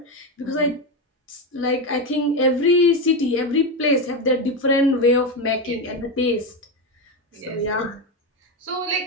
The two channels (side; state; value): both; normal; correlation 0.13